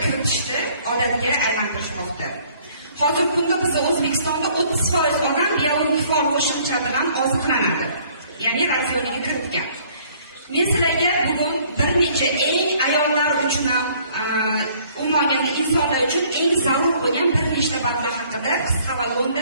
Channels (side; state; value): both; inverted; correlation -0.59